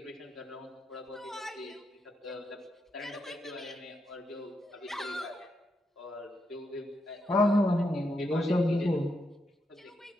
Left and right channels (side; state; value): both; normal; correlation 0.82